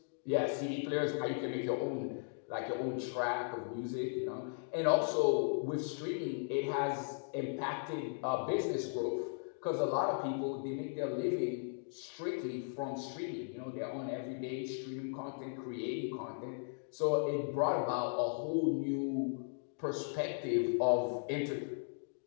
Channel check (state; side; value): silent; right; digital silence